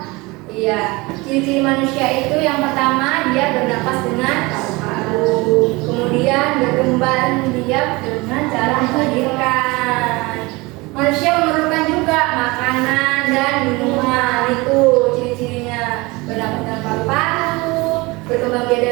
Iya, ciri-ciri manusia itu yang pertama dia bernapas dengan paru-paru, kemudian berkembang biak dengan cara melahirkan. Manusia memerlukan juga makanan dan minuman, itu ciri-cirinya. Bernapas dengan paru-paru, berkembang biak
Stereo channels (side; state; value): left; quieter; 23.8 dB